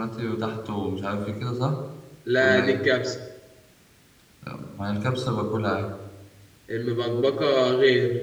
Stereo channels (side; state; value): both; identical; correlation 1.00